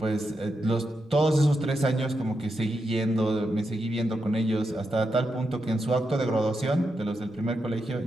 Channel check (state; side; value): normal; both; correlation 0.85